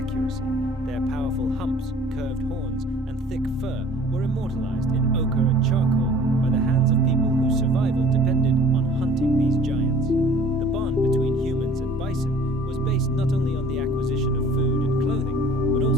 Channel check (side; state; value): both; normal; correlation 0.50